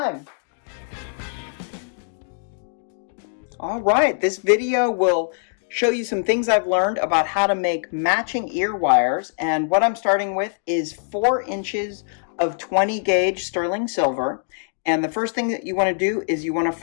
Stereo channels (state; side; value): silent; right; digital silence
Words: All right, this video will show you some things I've learned about how to make matching ear wires. And what I'm starting with is 4 inches of 20 gauge sterling silver. And the first thing that you want to do is you want to